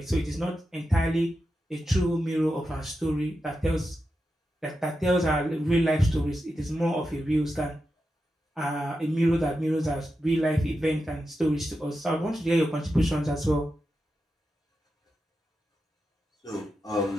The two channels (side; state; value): both; normal; correlation 0.89